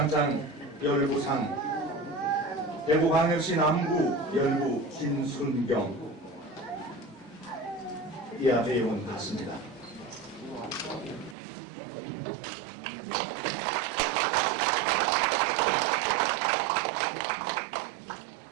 열부상 대구광역시 남구 열부 김순경. 이하 내용은 같습니다.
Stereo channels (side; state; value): left; drops out; at 11.4 s